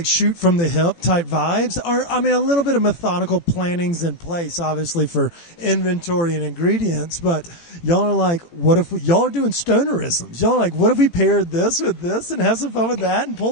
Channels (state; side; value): late; right; 18 ms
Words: shoot from the hip type vibes? Or, a little bit of methodical planning's in place, obviously, for inventory and ingredients, but y'all are like, what if y'all are doing stonerisms? Y'all are like, what if we paired this with this and have some fun with that and